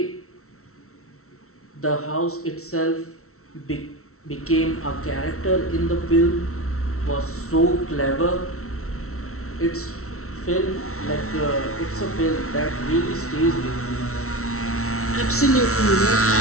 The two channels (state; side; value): late; right; 0.63 ms